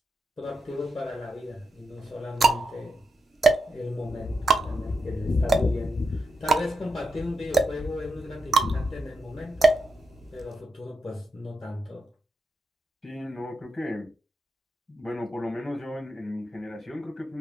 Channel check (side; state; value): both; normal; correlation 0.85